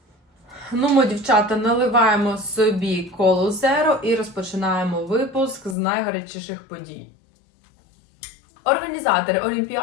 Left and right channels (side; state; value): right; drops out; at 5.8 s